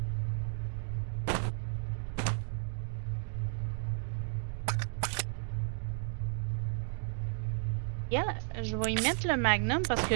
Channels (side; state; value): left; silent; 55 dB below the other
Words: Yeah, je vais y mettre le magnum parce que